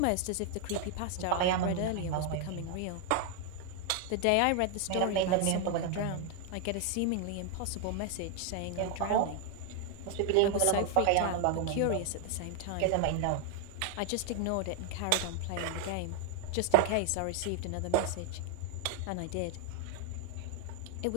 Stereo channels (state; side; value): different; both; correlation 0.00